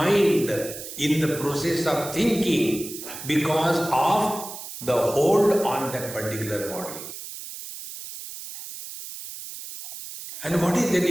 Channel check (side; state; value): right; noise; hiss, 11 dB below the sound